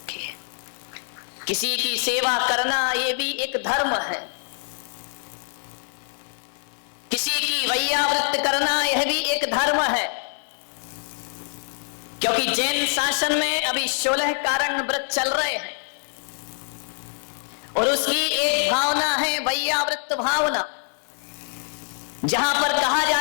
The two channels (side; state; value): right; silent; digital silence